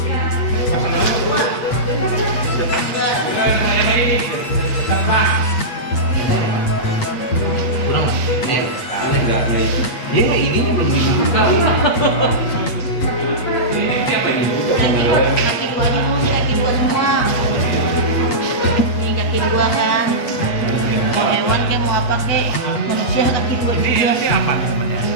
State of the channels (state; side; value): late; right; 8.4 ms